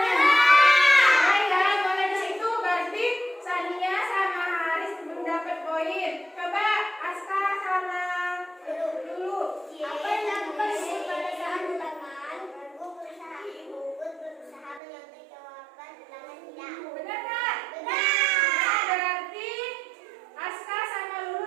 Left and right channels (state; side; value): drops out; left; at 14.8 s